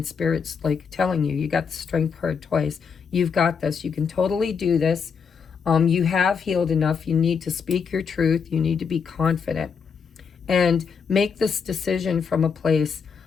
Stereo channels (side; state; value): right; quieter; 6.2 dB